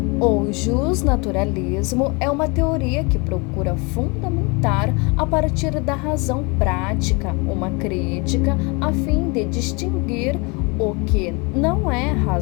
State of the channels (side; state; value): right; quieter; 29.3 dB